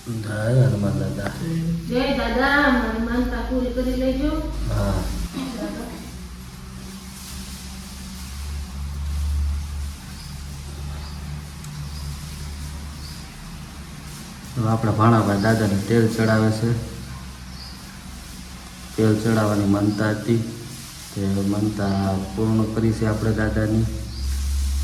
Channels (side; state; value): both; identical; correlation 1.00